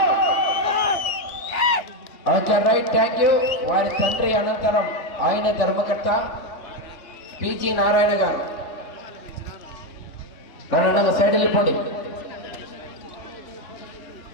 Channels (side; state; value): right; late; 2.6 ms